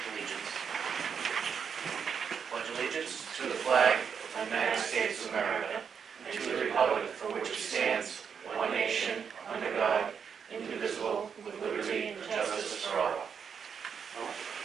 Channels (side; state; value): left; quieter; 6.8 dB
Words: Allegiance. Pledge allegiance to the flag of the United States of America and to the republic for which it stands, one nation, under God, indivisible, with liberty and justice for all.